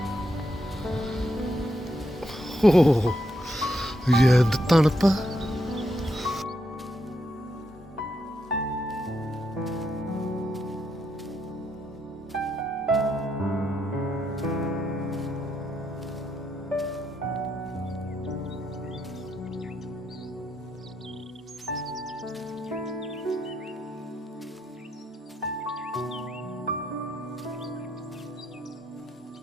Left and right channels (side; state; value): both; normal; correlation 0.79